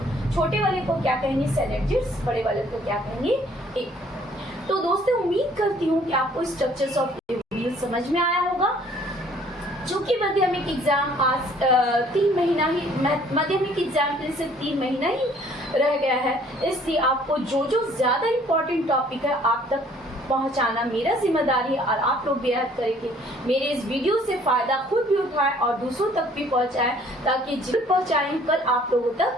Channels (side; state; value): both; normal; correlation 0.58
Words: छोटे वाले को क्या कहेंगे, सेलेजियस। बड़े वाले को क्या कहेंगे, एक। तो दोस्तों उम्मीद करती हूँ कि आपको स्ट्रक्चर्स ऑफ ओव्यूल समझ में आया होगा। चूंकि माध्यमिक एग्जाम पास 3 महीना ही, माध्यमिक एग्जाम के लिए सिर्फ 3 महीना ही रह गया है, इसलिए आपको जो ज्यादा इम्पोर्टेंट टॉपिक है आप तक पहुंचाना मेरा जिम्मेदारी है। और आप लोग बेहद करेंगे मेरे इस वीडियो से फायदा खुद भी उठाएं और दूसरों तक भी पहुंचाएं, ताकि जिन पहुंचाएं कल आप लोगों